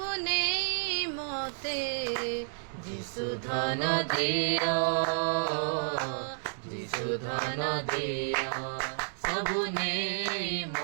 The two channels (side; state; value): left; silent; digital silence